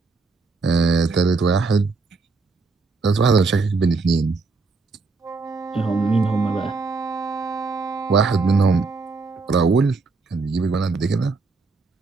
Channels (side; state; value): left; quieter; 4.0 dB